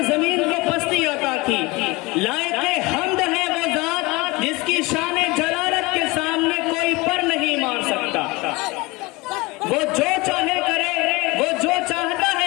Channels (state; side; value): quieter; right; 23.8 dB